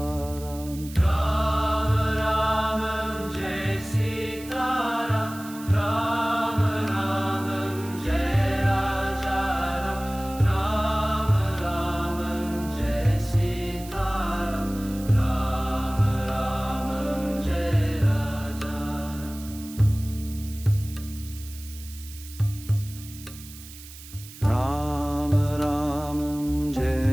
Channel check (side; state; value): right; noise; hiss, 17 dB below the sound